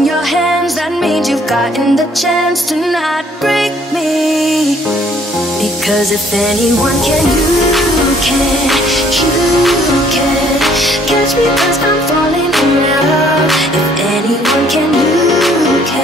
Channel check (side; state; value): both; normal; correlation 0.62